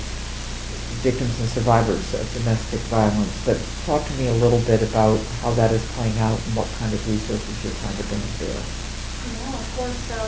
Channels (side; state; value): both; identical; correlation 1.00